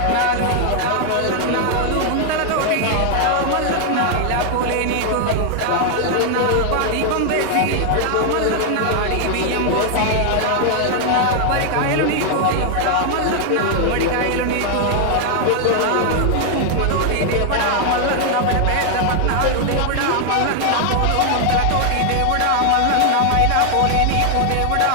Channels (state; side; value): different; both; correlation 0.00